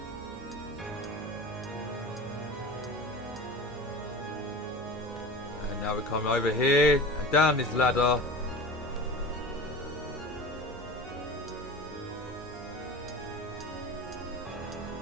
And now we come over here and down this ladder.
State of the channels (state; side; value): normal; both; correlation 0.34